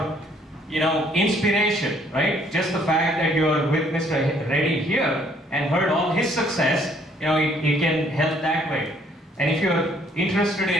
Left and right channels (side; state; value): both; normal; correlation 0.63